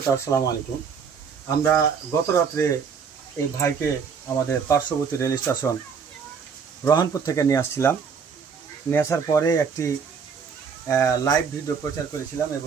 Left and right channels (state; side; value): quieter; left; 6.3 dB